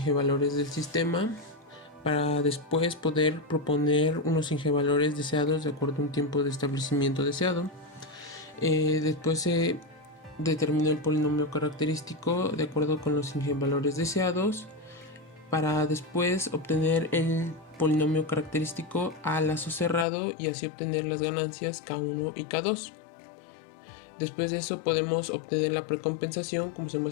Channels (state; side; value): drops out; right; at 20.1 s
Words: valores del sistema para después poder proponer unos valores deseados de acuerdo a un tiempo de establecimiento deseado. Después se determinó el polinomio característico de acuerdo con los valores deseados para después obtener el polinomio característico a lazo cerrado y así obtener las ganancias K1 y K2. Después de eso podemos obtener la precompensación como se